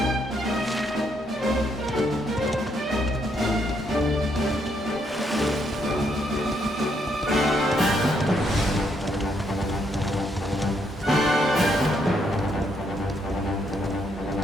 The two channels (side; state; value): both; normal; correlation 0.74